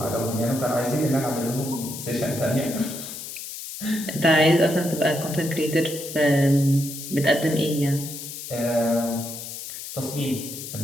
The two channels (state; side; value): noise; left; hiss, 9 dB below the sound